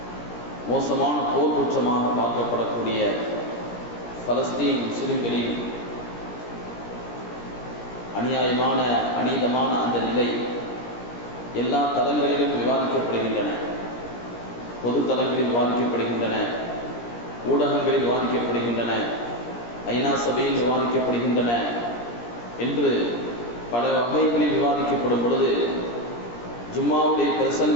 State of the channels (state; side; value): late; right; 17 ms